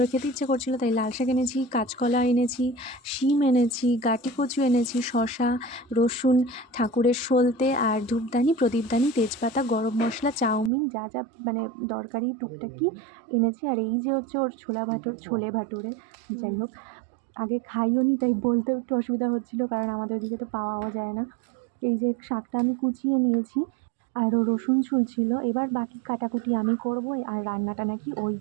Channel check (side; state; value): left; drops out; at 10.7 s